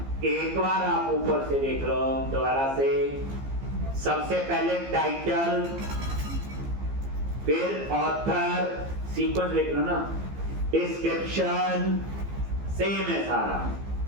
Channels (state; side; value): late; left; 15 ms